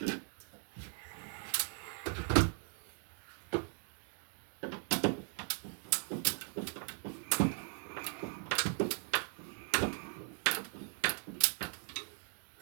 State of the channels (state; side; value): silent; left; 52 dB below the other